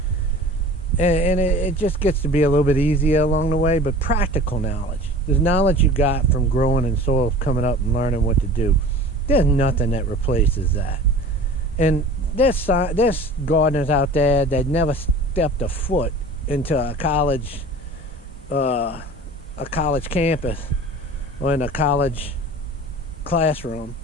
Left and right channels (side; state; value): both; normal; correlation 0.41